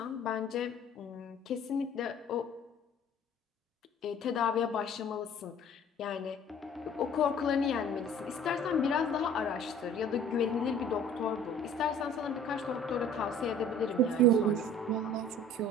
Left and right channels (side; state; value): both; normal; correlation 0.50